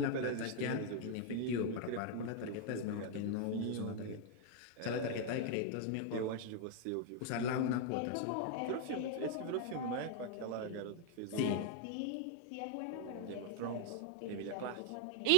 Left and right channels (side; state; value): both; different; correlation 0.00